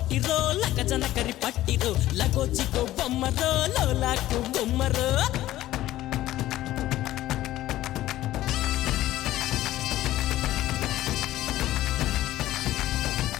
లగజన కరి పట్టిరో లగోజిగో బొమ్మరో లోలాకు గుమ్మరో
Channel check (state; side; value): quieter; right; 14.8 dB